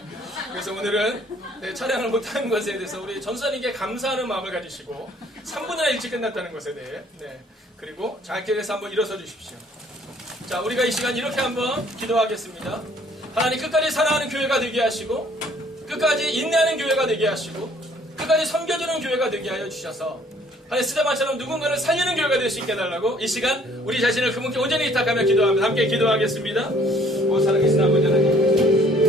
그래서 오늘은 찬양을 못하는 것에 대해서 우리 전사님께 감사하는 마음을 가지시고 3분이나 일찍 끝났다는 것에 대해 그리고 자기에서 한번 일어서 주십시오. 자, 우리가 이 시간 이렇게 한번 기도하겠습니다. 하나님 끝까지 사랑하는 교회가 되게 하시고 끝까지 인내하는 교회가 되게 하시고 끝까지 섬겨주는 교회가 되게 하여 주셔서 하나님 스데반처럼 누군가를 살리는 교회가 될 수 있게 해달라고 이 시간 우리 자신을 그분께 온전히 위탁하며 기도합니다. 함께 기도하겠습니다. 오 살아계신 아버지 하나님,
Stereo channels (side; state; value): both; normal; correlation 0.59